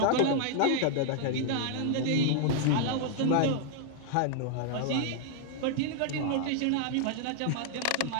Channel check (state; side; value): different; both; correlation -0.01